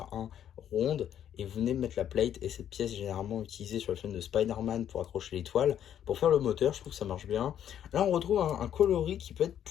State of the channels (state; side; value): quieter; right; 10.0 dB